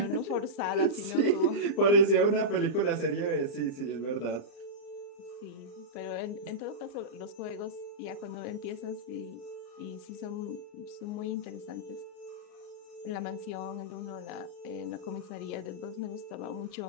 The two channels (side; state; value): right; late; 34 ms